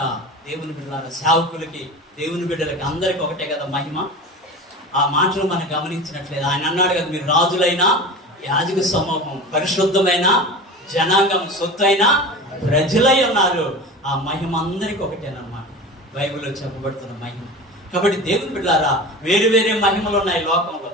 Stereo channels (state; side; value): normal; both; correlation 0.32